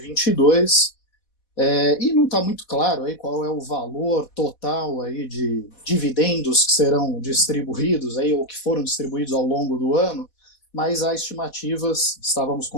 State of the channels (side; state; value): right; late; 4.1 ms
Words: E não está muito claro aí qual é o valor total aí de dividendos que serão distribuídos aí, ou que foram distribuídos ao longo do ano, mas há estimativas, estávamos